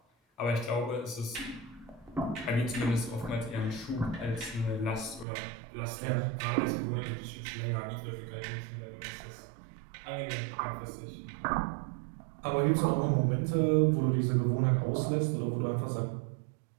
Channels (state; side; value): drops out; left; at 5.2 s